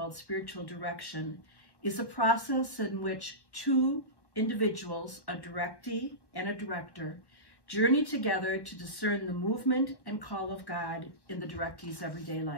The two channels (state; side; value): late; right; 1.1 ms